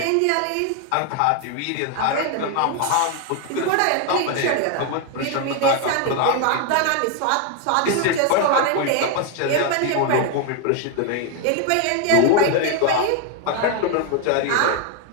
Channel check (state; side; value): different; both; correlation 0.01